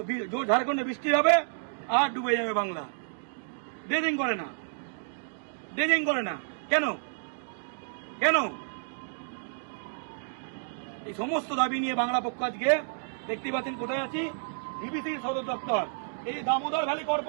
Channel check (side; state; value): left; silent; digital silence